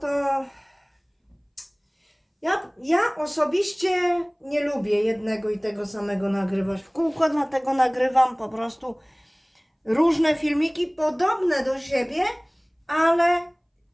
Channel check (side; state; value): both; identical; correlation 1.00